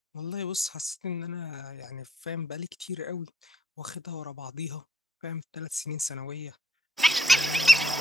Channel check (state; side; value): normal; both; correlation 0.70